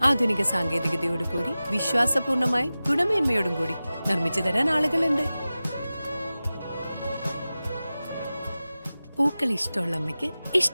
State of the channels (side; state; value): both; inverted; correlation -0.96